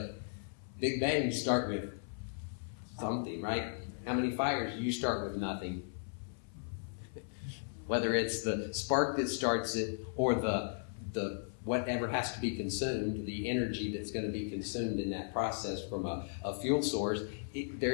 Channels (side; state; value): right; silent; 54 dB below the other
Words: big bangs start with something, right? How many fires do you start with? Nothing. Whether it's the spark that starts it or the whatever has to be consumed, the energy that's going to be consumed in that process from a fuel source,